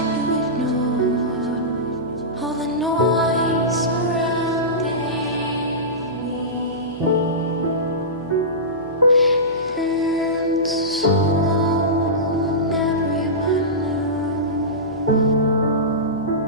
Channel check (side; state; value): right; noise; hum, 20 dB below the sound